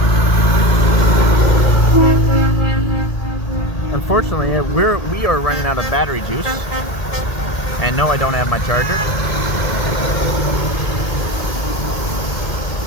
Unfortunately, we are running out of battery juice, and no, I don't have my charger.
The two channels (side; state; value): right; late; 1.8 ms